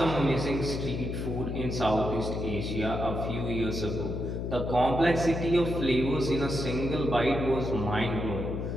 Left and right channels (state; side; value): noise; left; hum, 3 dB below the sound